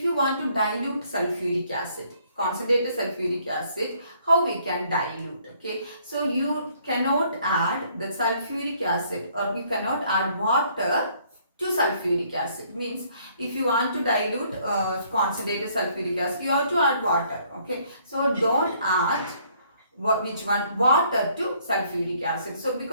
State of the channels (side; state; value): both; inverted; correlation -0.64